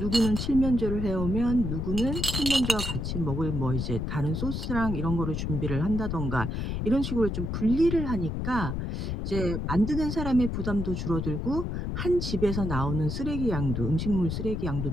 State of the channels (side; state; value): left; noise; rumble, 2 dB below the sound